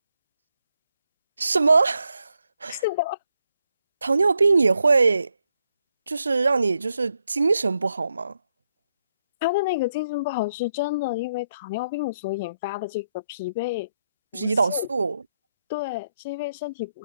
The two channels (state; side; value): inverted; both; correlation -0.80